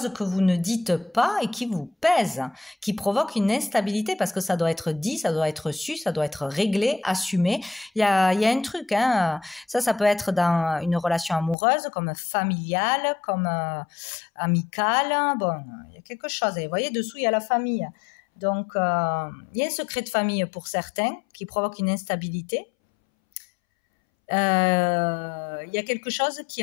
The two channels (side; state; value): right; drops out; at 11.6 s